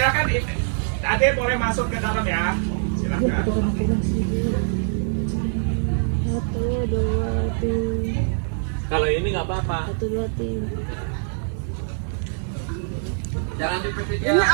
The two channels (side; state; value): left; silent; digital silence